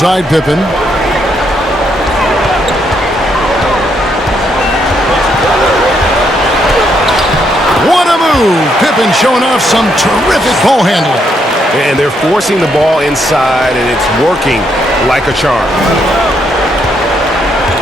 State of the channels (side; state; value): both; normal; correlation 0.75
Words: Pippen. What a move! Pippen showing off some terrific ball handling. And they're forcing the ball inside, and it's working like a charm.